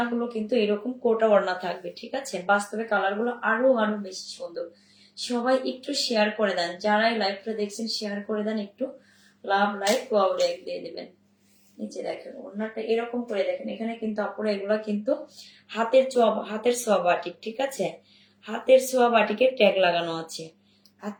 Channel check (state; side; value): identical; both; correlation 1.00